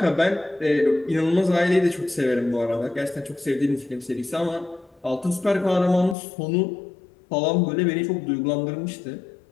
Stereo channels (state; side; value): drops out; right; at 6.2 s